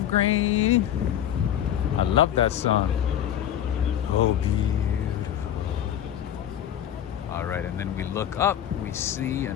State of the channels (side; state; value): right; quieter; 10.5 dB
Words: grain. I love that song. Oh, beautiful. All right, and then we look up, we see